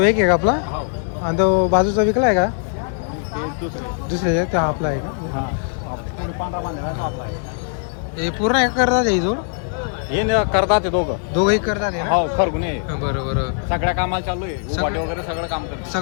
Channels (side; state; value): right; silent; 65 dB below the other